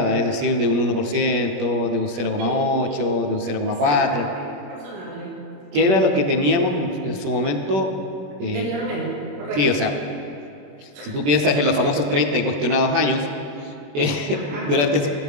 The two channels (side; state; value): left; late; 21 ms